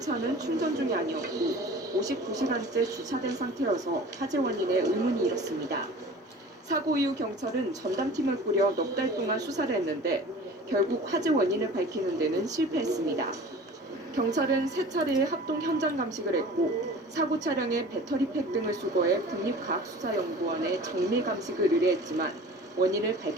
충전 중이 아니었고 59시간째 주차된 상태여서 화재 원인에 의문이 일었습니다. 사고 이후 경찰은 전담팀을 꾸려 넉 달 동안 수사를 했는데 결국 화재 원인을 밝히는 데는 실패했습니다. 경찰은 3차례의 합동 현장 감식을 했고 사고 차량의 배터리팩 등을 수거해 국립과학수사연구원에 정밀 감식을 의뢰했지만 원인을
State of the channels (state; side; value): normal; both; correlation 0.42